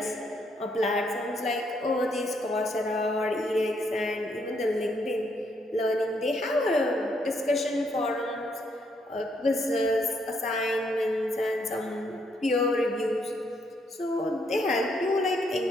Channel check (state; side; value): normal; both; correlation 0.73